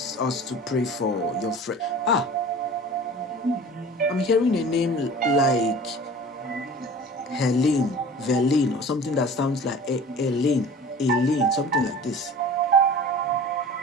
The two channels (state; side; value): normal; both; correlation 0.41